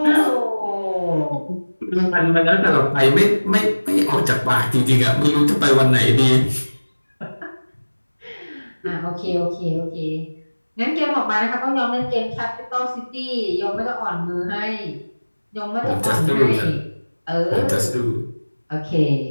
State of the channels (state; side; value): inverted; both; correlation -1.00